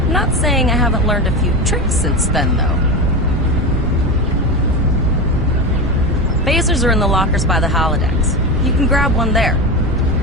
I'm not saying I haven't learned a few tricks since then, though. Phasers are in the lockers by the holodecks. You can grab one there.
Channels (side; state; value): both; normal; correlation 0.20